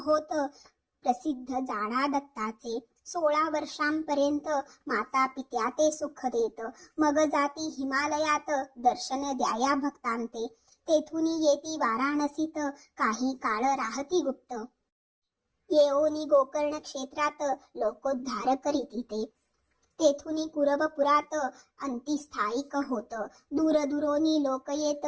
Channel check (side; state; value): both; identical; correlation 1.00